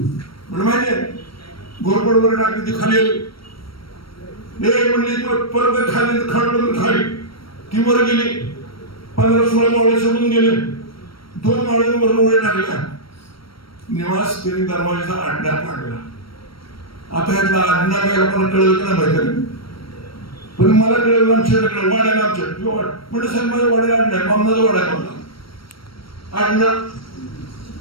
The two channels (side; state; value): right; late; 0.74 ms